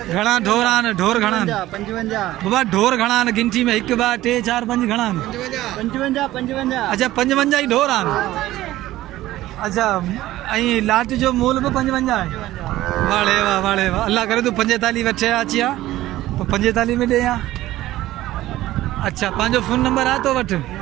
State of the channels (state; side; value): quieter; left; 15.6 dB